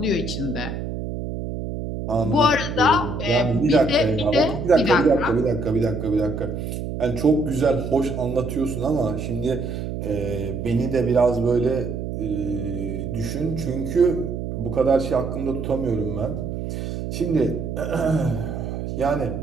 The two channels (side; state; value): right; noise; hum, 5 dB below the sound